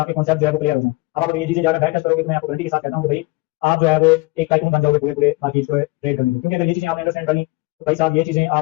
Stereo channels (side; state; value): right; quieter; 23.1 dB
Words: आपके कॉन्सेप्ट जो है वो क्लियर हो जाए। अब आप ये चीजें जाकर बैक टेस्ट करोगे तो मैं आपको गारंटी के साथ कहता हूं कि भाई आप जो है वो एक टाइकून बन जाओगे पूरे मार्केट को ट्रेड करने की, क्योंकि अगर ये चीजें आपने अंडरस्टैंड कर ली तो भाई साहब ये चीजें